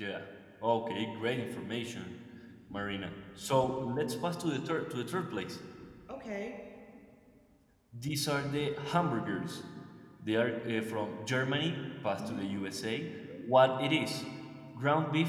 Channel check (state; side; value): identical; both; correlation 1.00